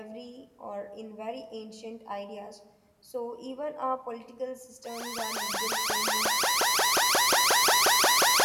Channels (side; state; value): both; identical; correlation 1.00